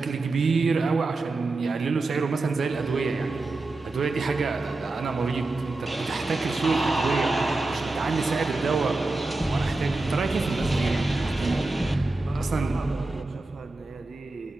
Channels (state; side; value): quieter; left; 3.2 dB